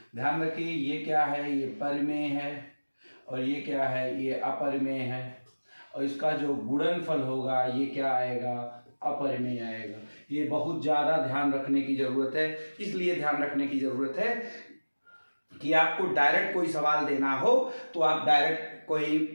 ध्यान रखिए ये क्या है, ये परिमेय है और ये क्या है, ये अपरिमेय है, और इसका जो गुणनफल होगा ये क्या आएगा, अपरिमेय आएगा। ये बहुत ज़्यादा ध्यान रखने की ज़रूरत है। इसलिए ध्यान रखने की ज़रूरत है कि आपको डायरेक्ट कोई सवाल देना हो तो आप डायरेक्ट कोई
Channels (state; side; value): inverted; both; correlation -1.00